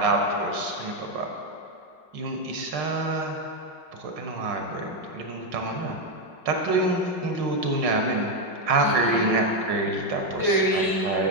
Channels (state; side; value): late; left; 5.4 ms